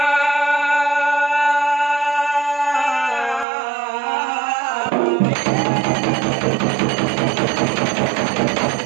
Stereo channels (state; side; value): drops out; left; at 3.5 s